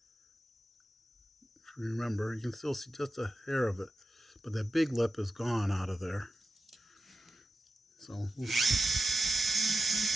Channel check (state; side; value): normal; both; correlation 0.91